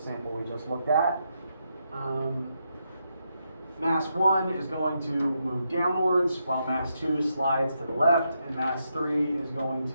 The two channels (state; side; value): inverted; both; correlation -0.81